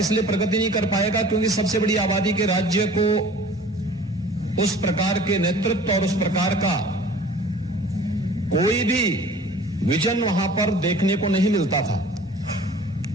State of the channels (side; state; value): both; normal; correlation 0.47